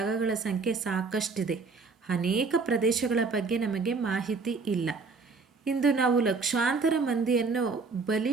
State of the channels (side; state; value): left; quieter; 4.5 dB